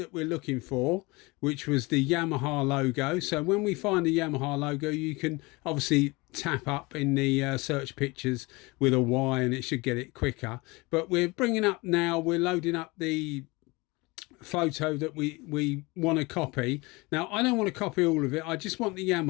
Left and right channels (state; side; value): quieter; right; 24.4 dB